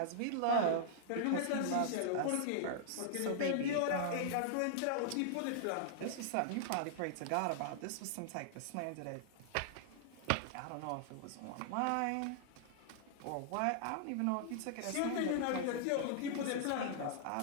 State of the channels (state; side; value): different; both; correlation -0.01